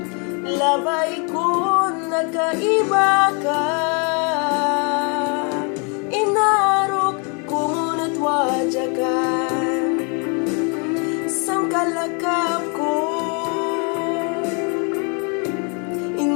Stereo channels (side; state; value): right; quieter; 35.5 dB